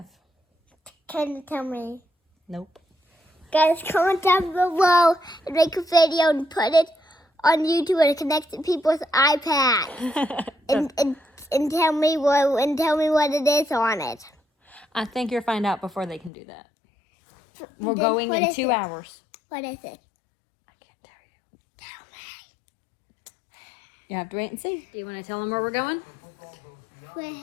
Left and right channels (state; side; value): drops out; right; at 16.3 s